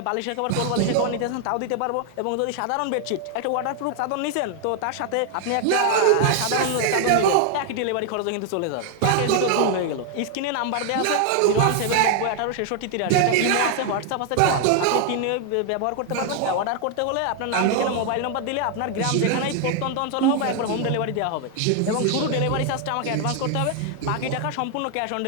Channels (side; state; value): both; different; correlation 0.00